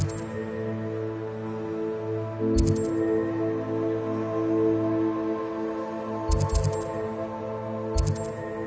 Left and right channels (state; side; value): identical; both; correlation 1.00